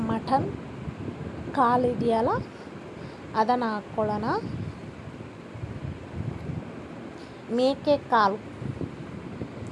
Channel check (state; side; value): identical; both; correlation 1.00